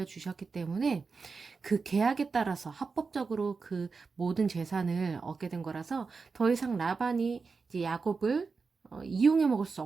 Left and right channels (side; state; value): left; quieter; 4.7 dB